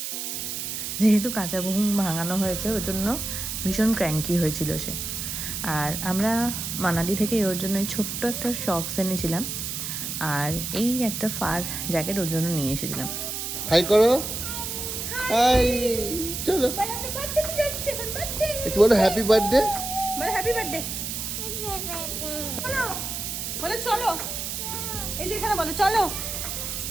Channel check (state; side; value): noise; right; hiss, 4 dB below the sound